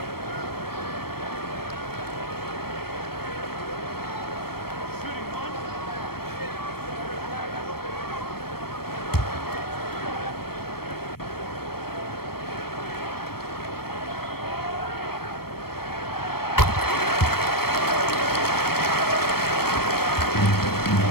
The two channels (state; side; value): late; right; 0.94 ms